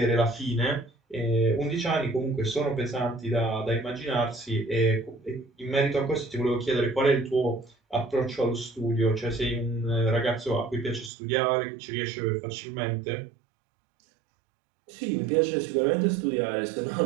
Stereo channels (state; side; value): drops out; left; at 11.1 s